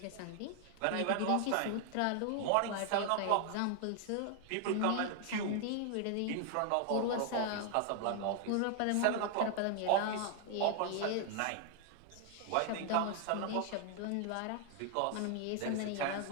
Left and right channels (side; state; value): both; different; correlation 0.00